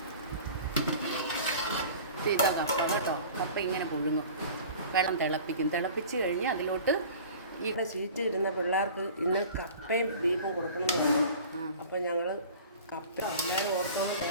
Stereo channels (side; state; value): both; inverted; correlation -0.42